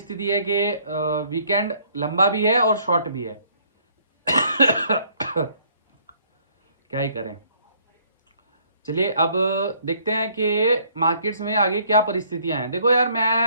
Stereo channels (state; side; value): inverted; both; correlation -0.63